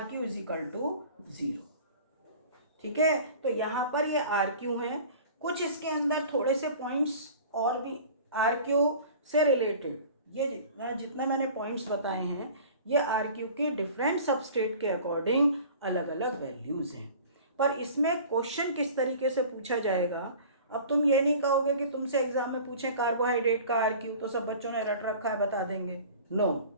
इज इक्वल टू 0। ठीक है, तो यहाँ पर ये RQ है। कुछ इसके अंदर थोड़े से पॉइंट्स और भी RQ से रिलेटेड, ये जितना मैंने पॉइंट्स बताए हैं ये RQ की डिफरेंट सबस्टेट के अकॉर्डिंग अलग अलग वैल्यूज़ हैं। पर इसमें क्वेश्चन किस तरीके से पूछा जाएगा, अब तुम ये नहीं कहोगे कि तुमसे एग्जाम में पूछें कार्बोहाइड्रेट का RQ तो सब बच्चों ने रट रखा है बता देंगे। नो,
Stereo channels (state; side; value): inverted; both; correlation -0.43